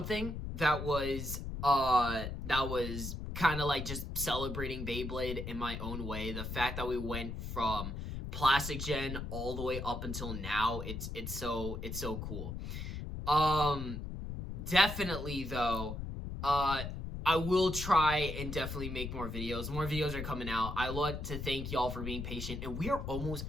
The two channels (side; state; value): left; noise; rumble, 6 dB below the sound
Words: that was kind of like just celebrating Beyblade in my own way. The fact that we went from Plastic Gen all the way up until now, it's so cool. Definitely though, I will try and definitely make more videos. More videos are coming out. I want to thank y'all for being patient. And we are almost